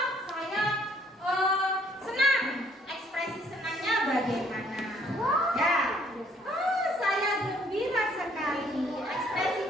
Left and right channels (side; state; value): both; normal; correlation 0.64